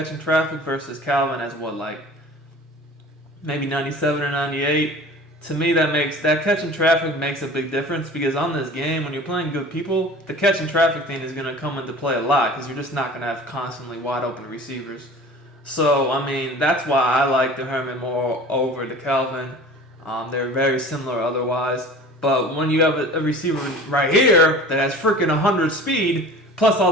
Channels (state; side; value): normal; both; correlation 0.41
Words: and traffic versus Calvin has maybe 97 or 98. To me, that catch and traffic makes a big difference because on this game, when you're playing good people, the catch and traffic thing is going to come into play a lot because you're just not going to have constantly wide open receivers. So, that's why I like the Herman Moore over the Calvin. They're very similar otherwise. But when you have a receiver right here that has freaking 100 speed, plus